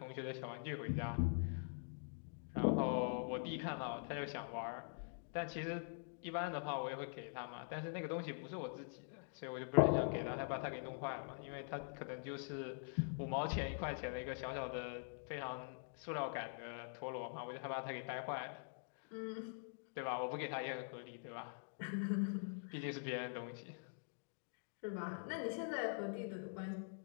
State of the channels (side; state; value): right; silent; digital silence